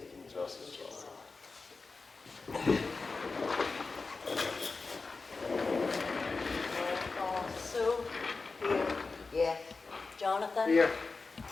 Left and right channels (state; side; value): quieter; right; 4.1 dB